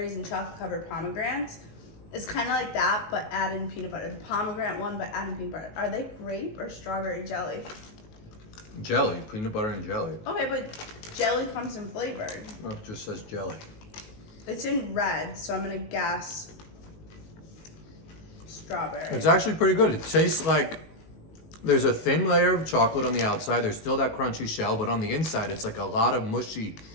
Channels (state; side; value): late; right; 19 ms